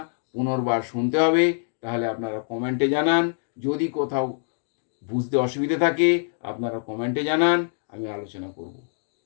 পুনর্বার শুনতে হবে, তাহলে আপনারা কমেন্টে জানান। যদি কোথাও বুঝতে অসুবিধে থাকে আপনারা কমেন্টে জানান, আমি আলোচনা করব।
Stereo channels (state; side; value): silent; right; digital silence